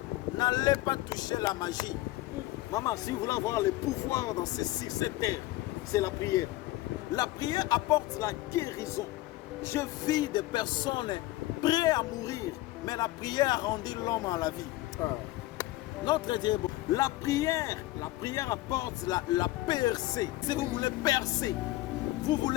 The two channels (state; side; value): quieter; right; 17.5 dB